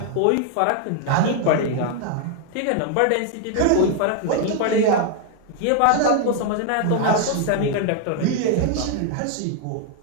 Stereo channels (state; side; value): different; both; correlation 0.00